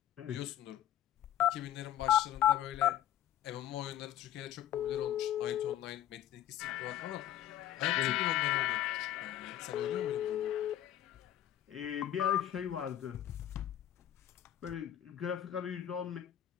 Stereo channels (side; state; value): right; quieter; 11.7 dB